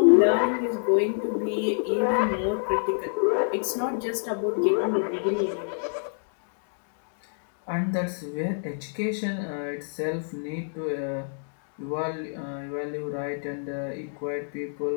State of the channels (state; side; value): silent; right; digital silence